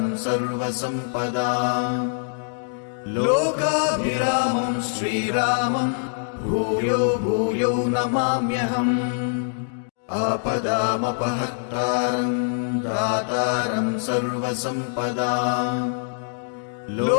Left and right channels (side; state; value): right; silent; digital silence